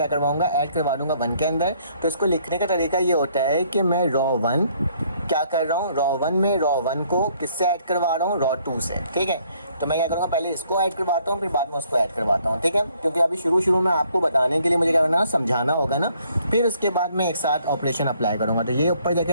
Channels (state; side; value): inverted; both; correlation -0.65